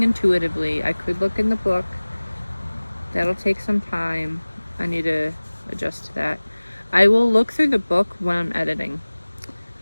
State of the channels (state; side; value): inverted; both; correlation -1.00